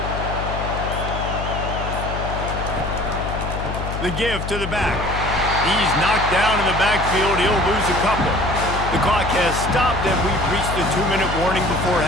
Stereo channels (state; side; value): noise; left; hum, 5 dB below the sound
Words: The give to the back. He's knocked down in the backfield. He'll lose a couple. The clock has stopped, and we've reached the 2-minute warning before